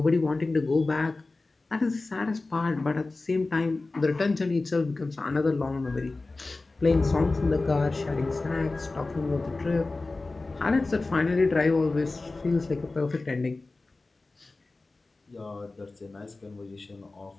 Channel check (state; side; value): quieter; right; 3.4 dB